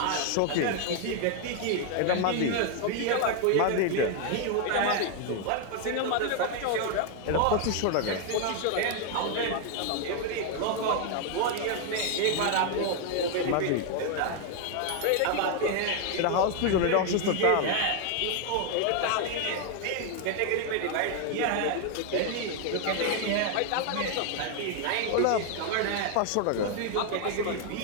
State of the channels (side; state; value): both; different; correlation 0.00